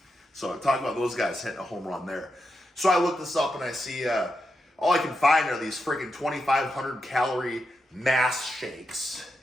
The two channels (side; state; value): both; normal; correlation 0.86